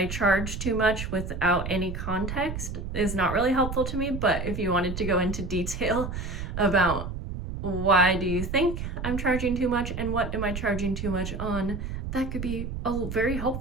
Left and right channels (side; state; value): right; noise; rumble, 6 dB below the sound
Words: charge too much without any context is not really helpful to me, but if you wanted to go into detail about why do you think I'm charging too much and what am I charging too much on, that could be very